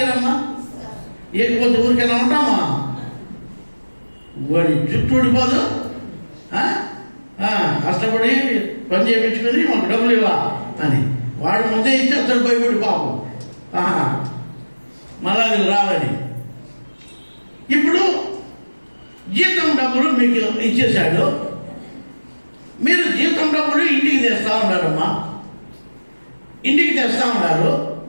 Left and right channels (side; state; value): both; inverted; correlation -1.00